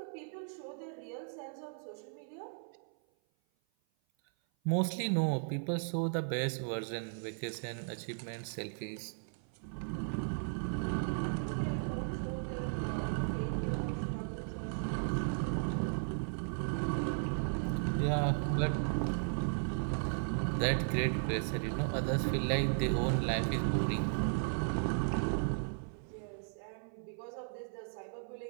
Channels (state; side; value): silent; left; 54 dB below the other